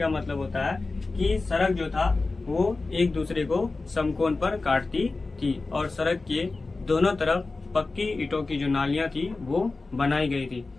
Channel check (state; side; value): quieter; right; 3.6 dB